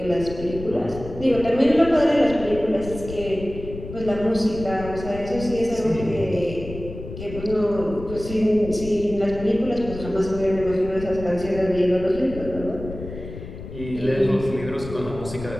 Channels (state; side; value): noise; left; rumble, 11 dB below the sound